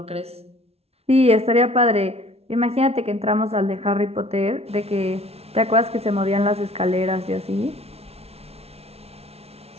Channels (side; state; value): left; late; 0.30 ms